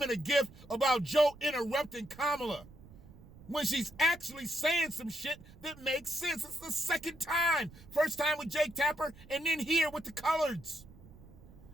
and a gif about Joe interrupting Kamala when she's actually saying some shit that makes sense. It's the second time. First time with Jake Tapper, and then here with the coloreds.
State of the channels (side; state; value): right; noise; rumble, 20 dB below the sound